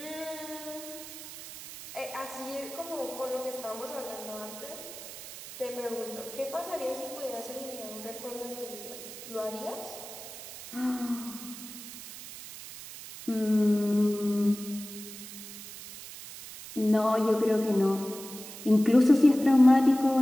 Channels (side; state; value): right; noise; hiss, 13 dB below the sound